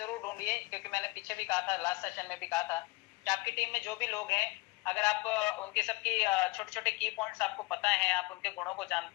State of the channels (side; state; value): right; quieter; 23.6 dB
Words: ढूंढिए, क्योंकि मैंने पीछे भी कहा था, लास्ट सेशन में भी कहा था कि आपकी टीम में जो भी लोग हैं, अगर आप उनके सबकी छोटे छोटे की पॉइंट्स आपको पता है, आप उनके गुणों को